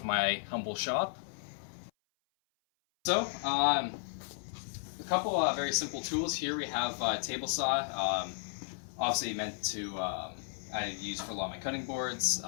my humble shop. So, a couple very simple tools here. We have a table saw, obviously meant to I use for a lot of my cutting boards,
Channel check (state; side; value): silent; right; 55 dB below the other